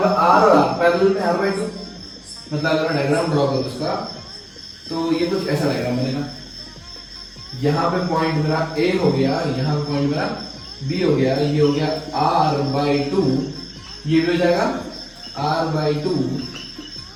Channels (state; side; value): identical; both; correlation 1.00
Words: R पैरेलल में R/2, मतलब अगर डायग्राम ड्रॉ करो इसका तो ये कुछ ऐसा डायग्राम बनेगा। यहाँ पे पॉइंट मेरा A हो गया, यहाँ पे पॉइंट मेरा B हो गया, ये हो गया R/2, ये भी हो जाएगा R/2,